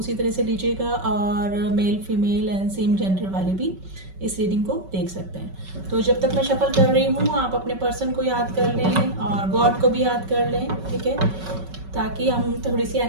तरह से लीजिएगा। और male female and same gender वाले भी इस रीडिंग को देख सकते हैं। तो जब तक मैं शफल कर रही हूँ, आप अपने पर्सन को याद कर लें और गॉड को भी याद कर लें, ठीक है, ताकि हम थोड़ी सी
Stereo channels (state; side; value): late; left; 5.3 ms